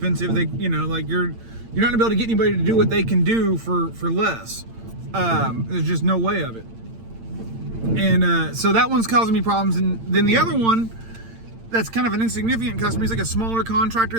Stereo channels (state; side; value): late; left; 8.8 ms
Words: they, like, you're not gonna be able to get anybody to do what they can do for less. There's just no way of it. And so that one's causing me problems. And then the other one that's kind of an insignificant customer, he's like a smaller contractor